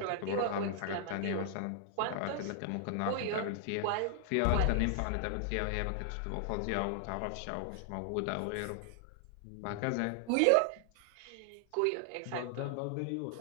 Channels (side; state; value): both; different; correlation 0.00